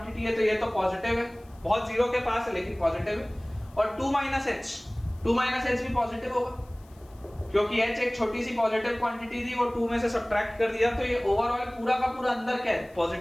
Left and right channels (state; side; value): noise; left; hiss, 30 dB below the sound